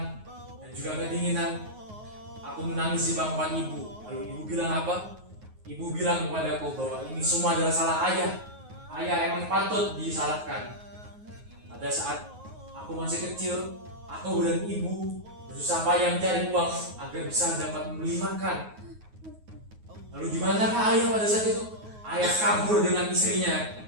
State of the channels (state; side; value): late; left; 9.4 ms